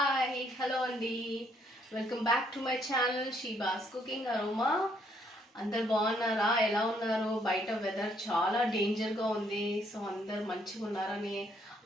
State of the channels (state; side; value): normal; both; correlation 0.70